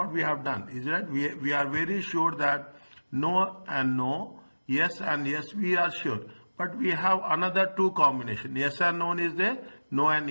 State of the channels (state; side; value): inverted; both; correlation -1.00